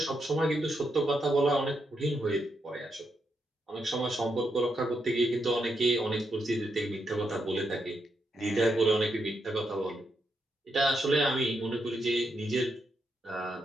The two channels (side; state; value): both; normal; correlation 0.82